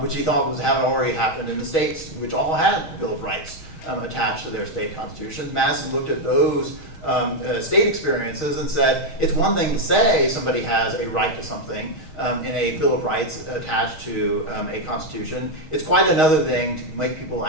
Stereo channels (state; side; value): late; right; 6.4 ms